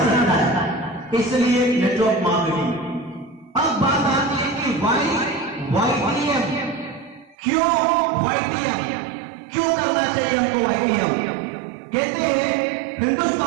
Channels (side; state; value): left; drops out; at 7.4 s